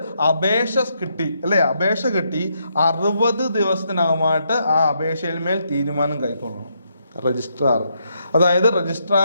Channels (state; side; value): inverted; both; correlation -0.77